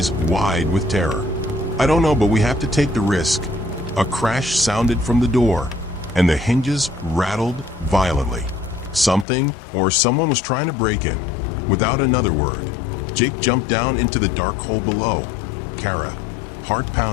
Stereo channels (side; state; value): right; drops out; at 9.2 s